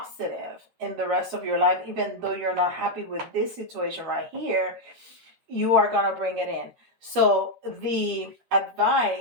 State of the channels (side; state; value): left; late; 13 ms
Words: in the rest of your life, even though you're not happy with this situation right here, you are going to bring it in. So the